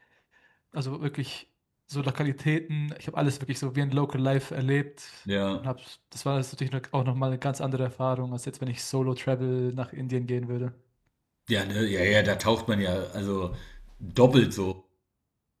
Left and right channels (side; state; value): both; identical; correlation 1.00